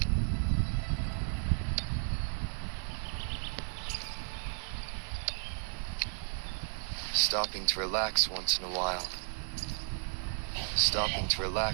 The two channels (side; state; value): left; silent; 55 dB below the other